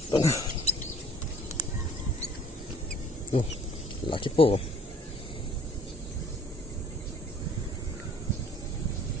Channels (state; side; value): normal; both; correlation 0.54